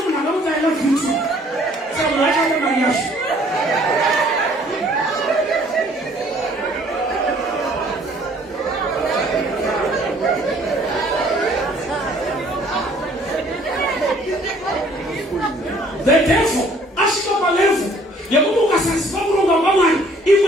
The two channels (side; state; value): both; normal; correlation 0.58